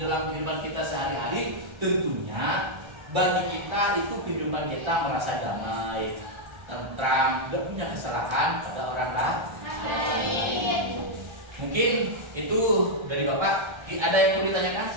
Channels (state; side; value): late; left; 1.3 ms